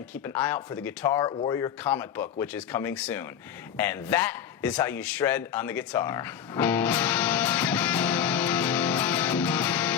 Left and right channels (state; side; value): quieter; right; 8.7 dB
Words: keep an eye out for the Guitar Warrior comic book, which is coming soon. And that is how you shred on the guitar.